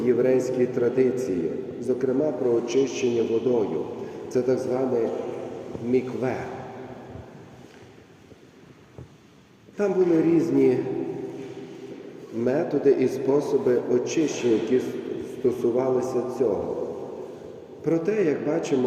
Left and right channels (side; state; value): both; identical; correlation 1.00